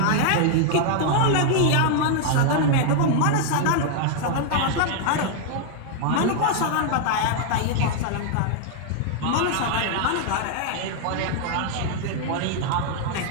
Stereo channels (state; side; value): different; both; correlation 0.00